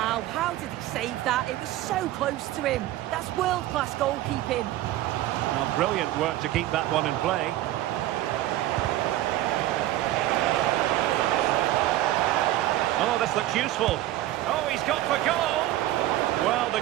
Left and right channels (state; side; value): quieter; left; 14.8 dB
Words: how did he save that? It was so close to him. That's world-class goalkeeping. Well, brilliant work to keep that one in play. Oh, this looks useful. Oh, he's got for goal. Well, the